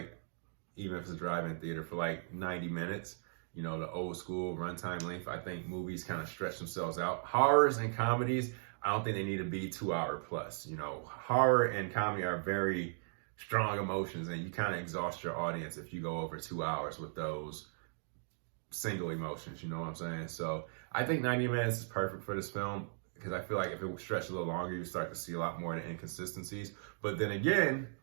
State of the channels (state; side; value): silent; left; digital silence